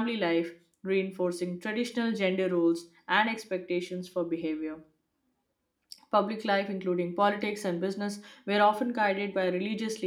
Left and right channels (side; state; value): both; identical; correlation 1.00